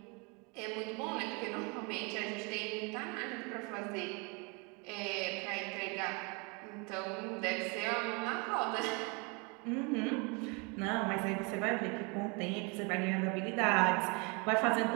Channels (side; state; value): left; quieter; 31.0 dB